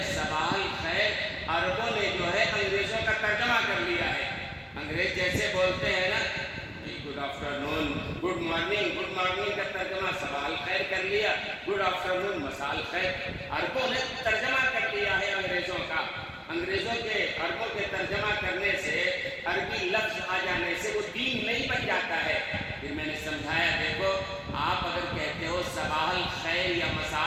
صباح الخیر عربوں نے جو ہے انگریزوں کا ترجمہ کر لیا ہے۔ انگریز جیسے بولتے ہیں نا، گڈ آفٹر نون، گڈ مارننگ، گڈ مارننگ کا ترجمہ صباح الخیر کر لیا، گڈ آفٹر نون مسال خیر، عربوں نے ترجمہ کر لیا ہے انگریزوں کا۔ انگریزوں کے عربوں کے ترجمہ کرنے سے، عربی لفظ آ جانے سے وہ دین نہیں بن جاتا ہے۔ پھر میں نے سمجھایا، دیکھو آپ اگر کہتے ہو صباح الخیر یا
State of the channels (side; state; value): both; identical; correlation 1.00